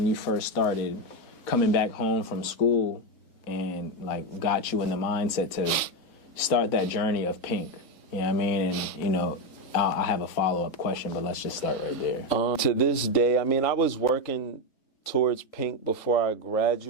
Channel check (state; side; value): late; right; 3.9 ms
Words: you first started coming back home from school and, like, got you in the mindset to start that journey of Pink? You know what I mean? And, you know, I have a follow-up question, but let's just start right there. To this day, I mean, I was working towards Pink before I